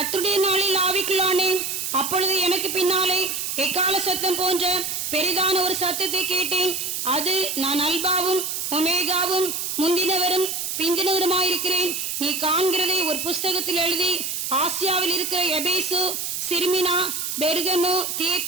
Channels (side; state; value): right; noise; hiss, 3 dB below the sound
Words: நாளில் ஆவிக்குள்ளானேன். அப்பொழுது எனக்கு பின்னாலே எக்கால சத்தம் போன்ற பெரிதான ஒரு சத்தத்தை கேட்டேன். அது, நான் அல்பாவும் ஒமேகாவும் முந்தினவரும் பிந்தினவருமாயிருக்கிறேன். நீ காண்கிறதை ஒரு புஸ்தகத்தில் எழுதி ஆசியாவில் இருக்கிற எபேசு, சிர்மினா, பெர்கமு,